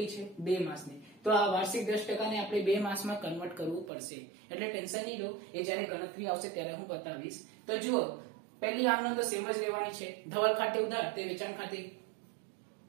છે 2 માસની। તો આ વાર્ષિક 10% ને આપણે 2 માસમાં કન્વર્ટ કરવું પડશે, એટલે ટેન્શન નહીં લો, એ જ્યારે ગણતરી આવશે ત્યારે હું બતાવીશ। તો જુઓ પહેલી આમનો તો સેમ જ લેવાની છે। ધવલ ખાતે ઉધાર તે વેચાણ ખાતે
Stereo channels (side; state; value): left; drops out; at 3.9 s